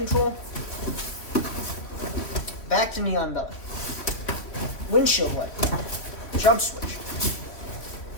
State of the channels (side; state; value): right; late; 3.1 ms